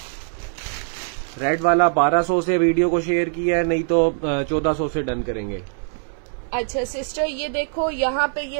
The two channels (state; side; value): silent; left; digital silence